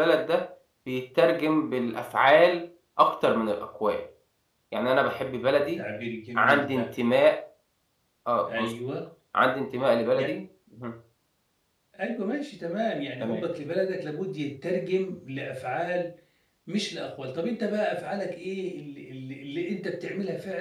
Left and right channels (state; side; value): identical; both; correlation 1.00